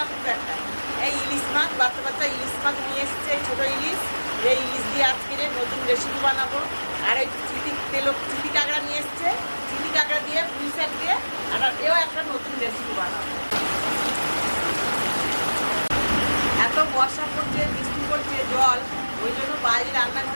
খুব একটা, এই ইলিশ মাছ, বাচ্চা বাচ্চা ইলিশ মাছ নিয়ে এসছে, ছোটো ইলিশ। এই ইলিশ দিয়ে আজকের নতুন রেসিপি বানাবো। আর এই চিটি কাঁকড়া নিয়ে এসছে, চিটি কাঁকড়া দিয়ে পুঁই শাক দিয়ে আর এও একটা নতুন রেসিপি বানাবো। এত বর্ষা পড়ছে, বৃষ্টি পড়ছে, জল, ওই জন্য বাইরে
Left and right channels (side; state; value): both; inverted; correlation -1.00